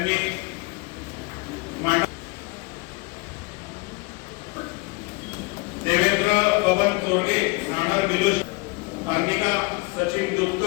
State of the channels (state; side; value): quieter; right; 27.1 dB